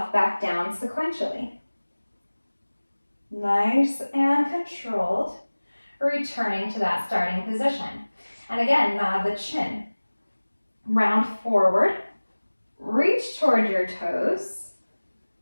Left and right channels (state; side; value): inverted; both; correlation -1.00